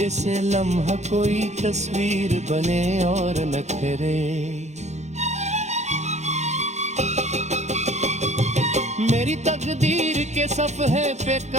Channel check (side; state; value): left; late; 0.33 ms